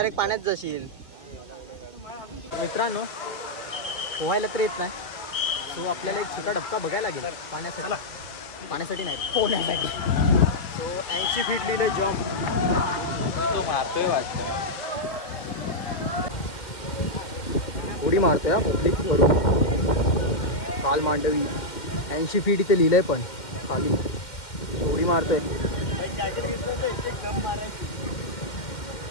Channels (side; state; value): right; late; 2.1 ms